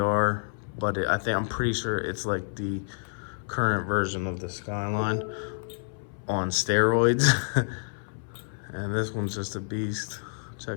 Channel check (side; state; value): right; silent; 59 dB below the other